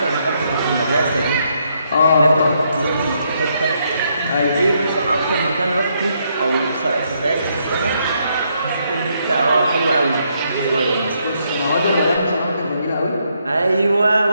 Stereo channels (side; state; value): both; inverted; correlation -0.75